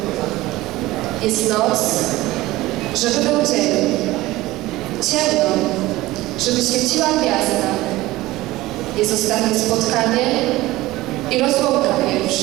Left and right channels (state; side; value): quieter; left; 18.1 dB